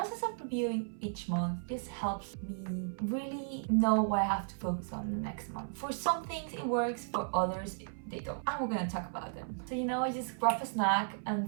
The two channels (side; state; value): left; silent; 55 dB below the other